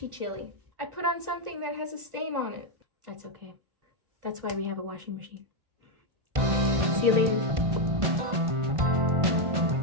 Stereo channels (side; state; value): left; late; 1.4 ms